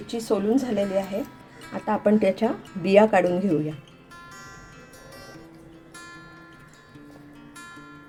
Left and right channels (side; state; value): both; identical; correlation 1.00